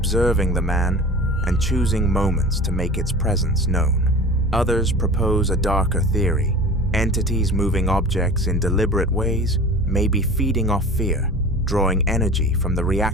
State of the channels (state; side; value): normal; both; correlation 0.38